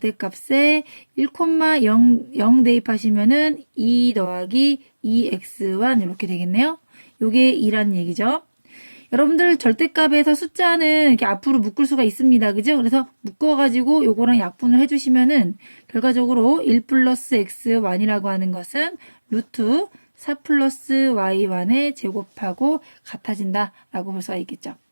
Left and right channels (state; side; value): inverted; both; correlation -1.00